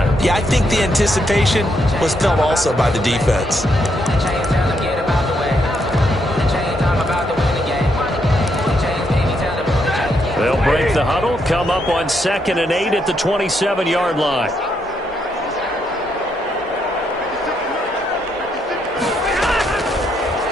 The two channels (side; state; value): both; normal; correlation 0.77